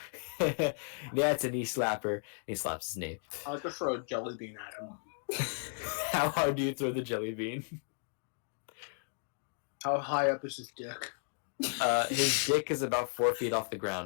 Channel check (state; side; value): silent; right; digital silence